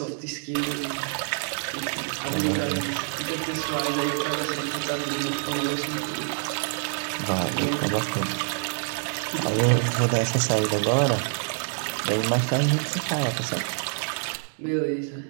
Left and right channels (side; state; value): left; silent; digital silence